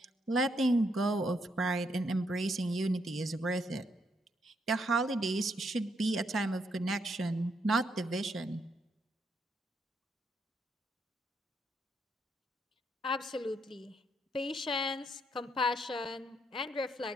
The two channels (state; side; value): normal; both; correlation 0.75